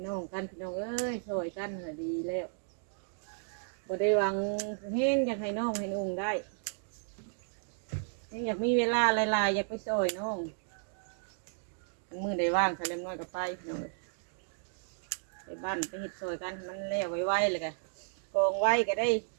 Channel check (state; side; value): silent; left; digital silence